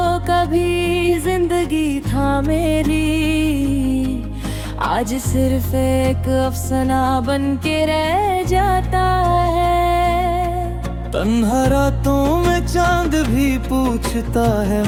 कभी जिंदगी था मेरी, आज सिर्फ एक अफसाना बन के रह जाता है। तन्हा रातों में चांद भी पूछता है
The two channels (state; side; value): identical; both; correlation 1.00